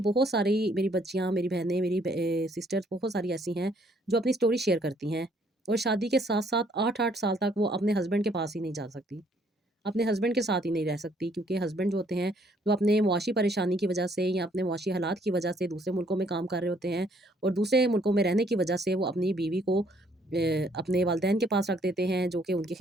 सारी मेरी बच्चियाँ, मेरी बहनें, मेरी सिस्टर्स बहुत सारी ऐसी हैं जो अपनी स्टोरी शेयर करती हैं और शादी के साथ-साथ 8-8 साल तक वो अपने हस्बैंड के पास ही नहीं जा सकती। अपने हस्बैंड के साथ ही नहीं रह सकती क्योंकि हस्बैंड जो होते हैं, वो अपने मुआशी परेशानी की वजह से या अपने मुआशी हालात की वजह से दूसरे मुल्कों में काम कर रहे होते हैं और दूसरे मुल्कों में रहने की वजह से वो अपनी बीवी को अपने वालिदैन के पास रख देते हैं, जो कि उनकी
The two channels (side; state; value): both; normal; correlation 0.65